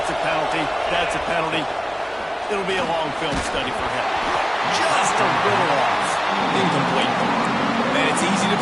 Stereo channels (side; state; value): both; identical; correlation 1.00